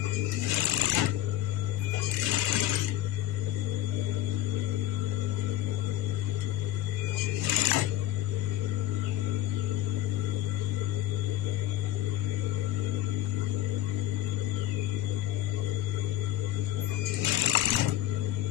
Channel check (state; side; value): quieter; right; 13.6 dB